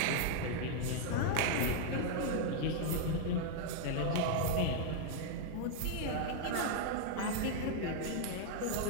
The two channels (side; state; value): both; different; correlation 0.00